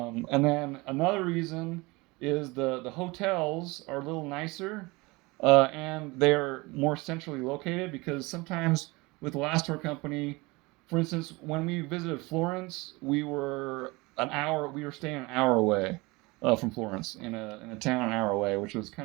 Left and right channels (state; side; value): quieter; left; 24.1 dB